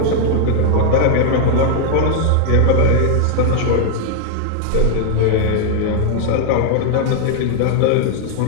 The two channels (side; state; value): both; different; correlation 0.00